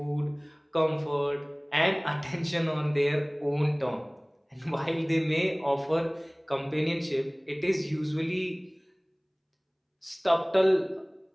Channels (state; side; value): identical; both; correlation 1.00